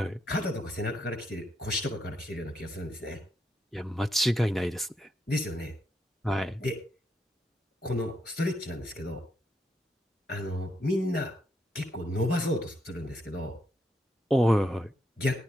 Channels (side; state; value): both; normal; correlation 0.79